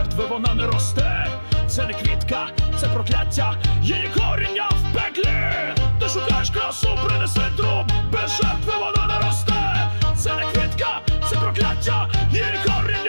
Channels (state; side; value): inverted; both; correlation -1.00